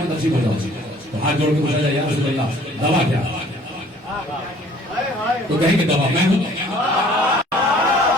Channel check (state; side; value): normal; both; correlation 0.55